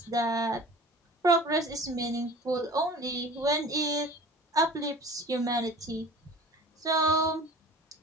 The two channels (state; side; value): normal; both; correlation 0.41